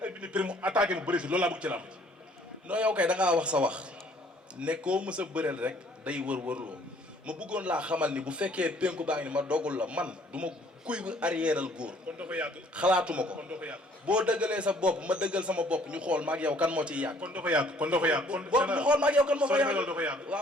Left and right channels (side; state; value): both; normal; correlation 0.59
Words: ay bini prix mu attaqué mu bëri si loolu laa bëgg ci lamb non yow kay da ngaa wax sa wax ne koo mës a bëreel rek day wër-wërloo ma bëggoon laa xamal ni bu fekkee penku baa ngi ni ma dogul la man du ma kuy arrièreal góor. kon doo ko yàgg. xalaatuma ko kon doo ko yàgg. boo dëggalee sa bopp ma dëggal sama bopp ñu xool ma ak yow kan moo ciy yàgg. kon doo ko yàgg kon doo ko yàgg. kon boo ñu xool ma ak yow kan moo fa yàgg doo ko yàgg.